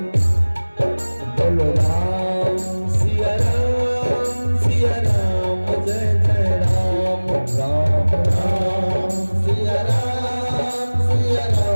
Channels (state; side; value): inverted; both; correlation -1.00